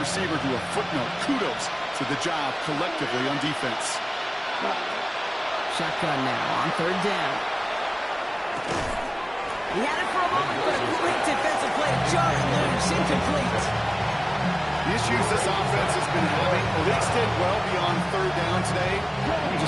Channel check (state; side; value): identical; both; correlation 1.00